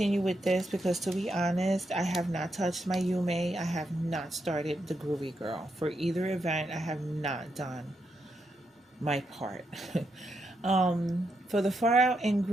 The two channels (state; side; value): normal; both; correlation 0.82